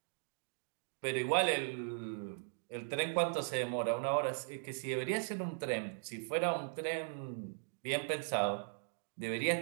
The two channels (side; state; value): left; silent; digital silence